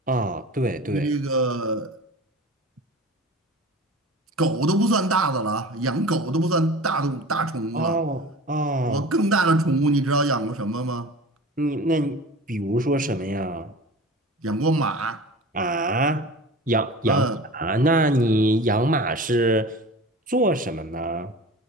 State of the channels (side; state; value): both; normal; correlation 0.36